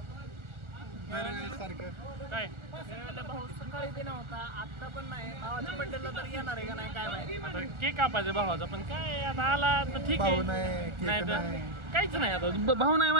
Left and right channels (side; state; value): left; late; 1.4 ms